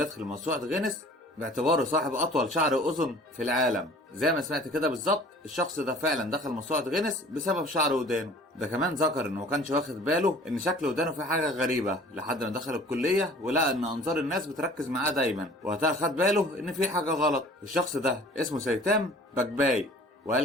موسوعة غينيس باعتباره صاحب اطول شعر اذن في العالم. زي ما سمعت كده بالظبط، الشخص ده فعلا دخل موسوعة غينيس بسبب شعر ودانه. ده كمان ذكر انه ما كانش واخد باله ان شكل ودانه فيه حاجة غريبة لحد ما دخل الكلية ولقى ان انظار الناس بتركز معاه دايما، وقتها خد باله ان في حاجة غلط. الشخص ده اسمه سيتام باكباي،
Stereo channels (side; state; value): both; normal; correlation 0.48